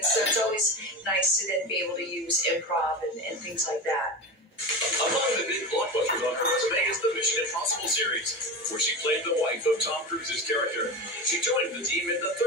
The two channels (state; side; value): normal; both; correlation 0.25